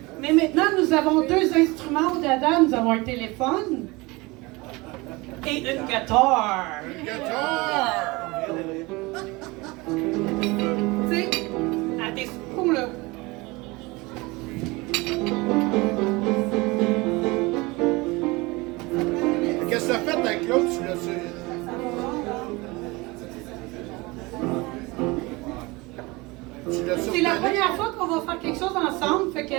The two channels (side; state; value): left; quieter; 23.7 dB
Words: Mais maintenant, nous avons deux instruments au dada. Nous avons un téléphone et une guitare. Guitare! Tu sais, à des coups, là. Qu'est-ce que t'as fait avec l'autre? Tu l'as su? C'est la première fois qu'on va faire quelque chose ensemble, fait que